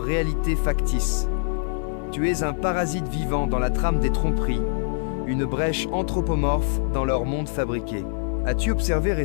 réalité factice. Tu es un parasite vivant dans la trame des tromperies, une brèche anthropomorphe dans leur monde fabriqué. As-tu observé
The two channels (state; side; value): silent; right; 59 dB below the other